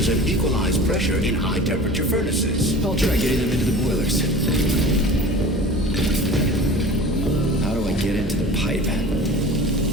and equalize pressure in high-temperature furnaces. I'll try getting them into the boilers. How do I get into the pipe?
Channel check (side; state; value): both; normal; correlation 0.39